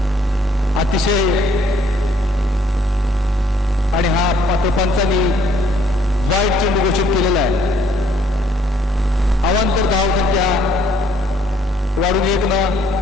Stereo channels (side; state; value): both; normal; correlation 0.64